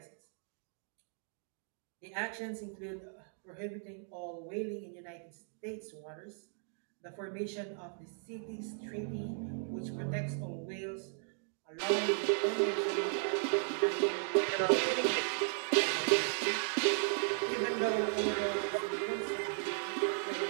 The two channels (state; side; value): silent; left; 54 dB below the other